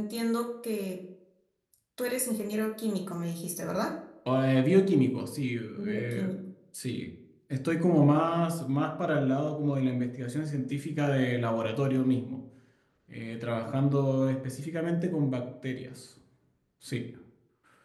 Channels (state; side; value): identical; both; correlation 1.00